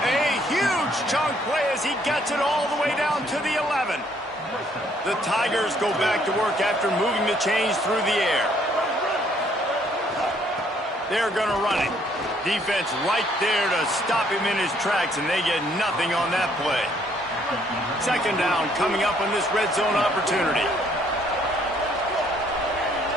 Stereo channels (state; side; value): normal; both; correlation 0.65